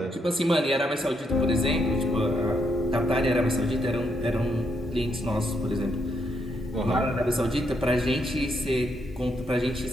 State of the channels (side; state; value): both; normal; correlation 0.77